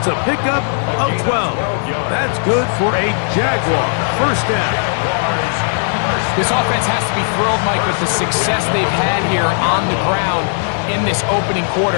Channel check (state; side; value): silent; right; 63 dB below the other